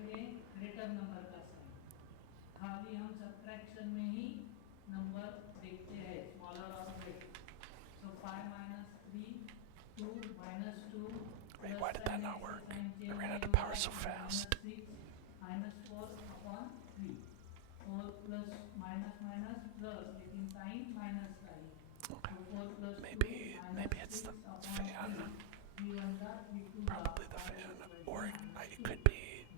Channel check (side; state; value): both; different; correlation 0.00